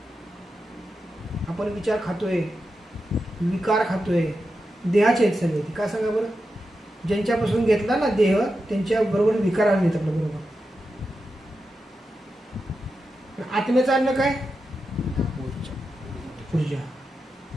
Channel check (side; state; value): both; normal; correlation 0.89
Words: आपण विचार खातोय, विकार खातोय, देहाचे आहेत सगळे. का सांगा बरं? ज्यांच्यापासून घेतला ना देह, त्यांच्या बरोबर विकार आले आपल्या बरोबर. आत्म्याचं अन्न काय? ऊर्जा.